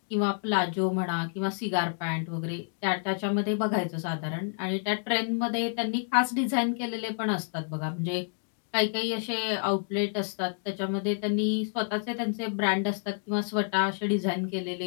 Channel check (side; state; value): right; silent; digital silence